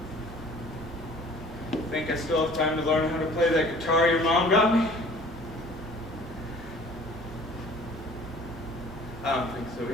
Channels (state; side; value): normal; both; correlation 0.50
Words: Think I still have time to learn how to play that guitar your mom got me? I don't think so